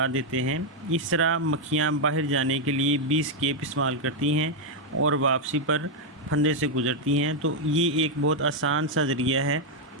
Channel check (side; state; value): both; normal; correlation 0.00